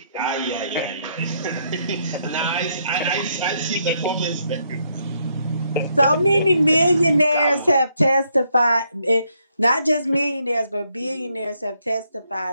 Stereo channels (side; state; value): both; inverted; correlation -0.74